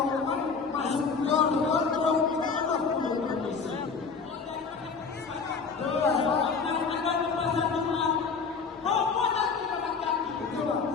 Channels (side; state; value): right; quieter; 5.2 dB